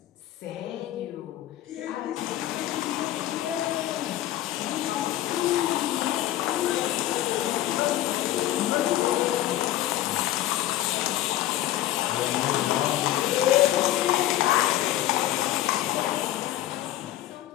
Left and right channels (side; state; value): right; quieter; 13.9 dB